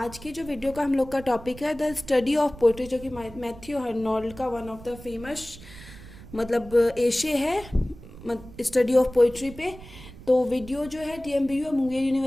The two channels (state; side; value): noise; right; rumble, 17 dB below the sound